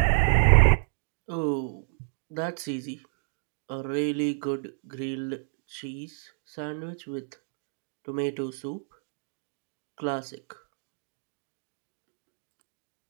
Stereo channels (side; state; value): left; silent; digital silence